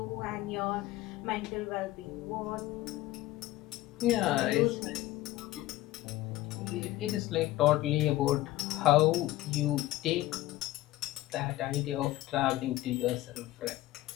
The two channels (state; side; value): quieter; right; 16.3 dB